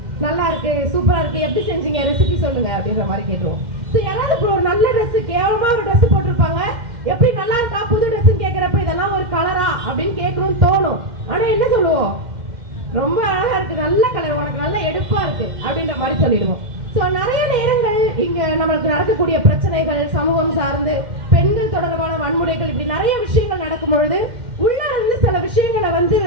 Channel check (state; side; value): late; left; 2.1 ms